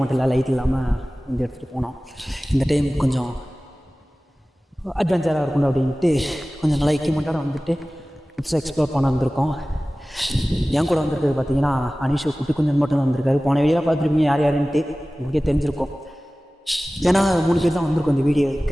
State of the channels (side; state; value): both; normal; correlation 0.97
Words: இல்லை, லைட் இல்லாமல் வந்து எடுத்துகிட்டு போனோம். இந்த டைம் கொஞ்சம் அட்வென்ச்சராக இருக்கணும் அப்படின்ட்டு கொஞ்சம் நல்லா எக்யூப்மெண்ட்டோட வந்துட்டு புதுசாக எக்ஸ்ப்ளோர் பண்ண வந்திருக்கோம். என் கூட வந்திருக்கிறது பார்த்தீங்கன்னா அனிஷு குட்டி குஞ்சன் மட்டும் தான் வந்திருக்காரு. போன வீடியோலாம் பார்த்துருப்பீங்க யார் யாருன்ட்டு, உங்களுக்கே தெரிஞ்சிருக்கும். ஏன்னா 3 பேர் தான் வந்திருக்கோம் இந்த வீடியோ